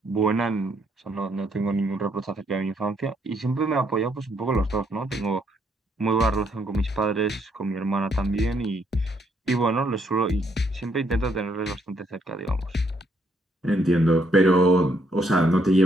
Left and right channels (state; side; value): normal; both; correlation 0.72